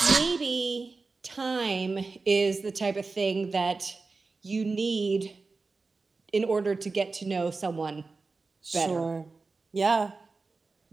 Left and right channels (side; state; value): left; quieter; 4.0 dB